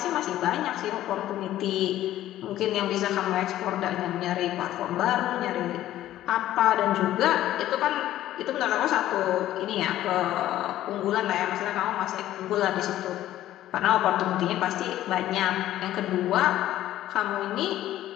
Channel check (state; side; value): quieter; right; 13.5 dB